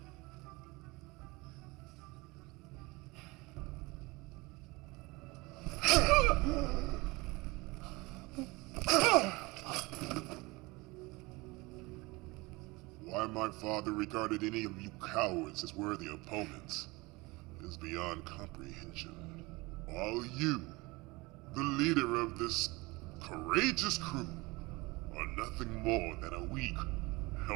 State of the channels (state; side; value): quieter; left; 23.7 dB